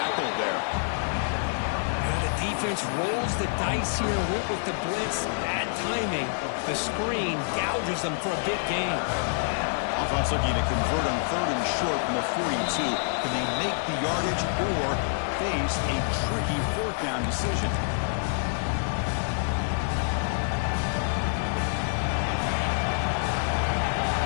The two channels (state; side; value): silent; right; 58 dB below the other